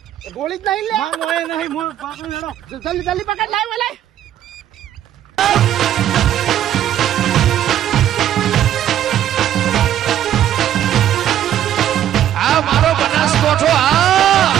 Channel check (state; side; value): quieter; left; 11.3 dB